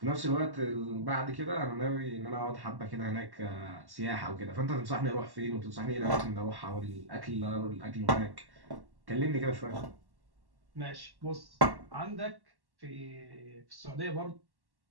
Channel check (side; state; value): left; late; 1.1 ms